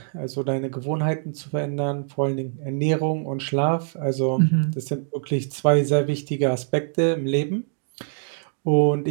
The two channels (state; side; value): silent; left; digital silence